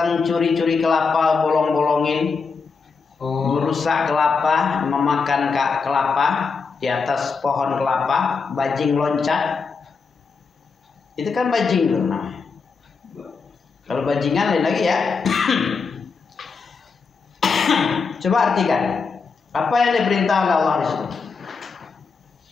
curi-curi kelapa, bolong-bolongin. Merusak kelapa, memakan kelapa di atas pohon kelapa, bajing loncat. Itu kan bajing tuh namanya. Kalau bajingan lain lagi ya. Coba artikan. Apa yang diperintah oleh Allah di situ?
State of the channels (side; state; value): right; quieter; 5.0 dB